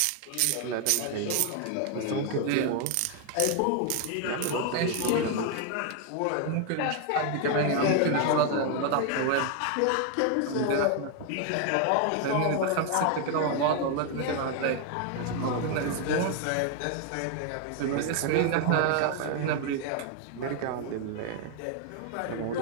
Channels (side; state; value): both; different; correlation 0.00